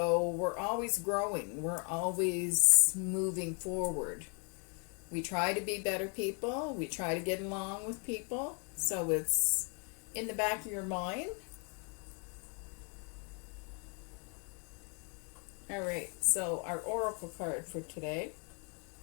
we're always growing. We're always moving forward. We try to be better people. We try to get along with people. So it's in the back of your mind. All right, so our oracle card for today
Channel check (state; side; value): quieter; right; 37.2 dB